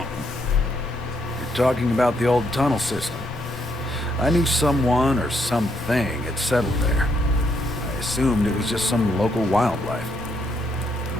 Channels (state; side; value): normal; both; correlation 0.75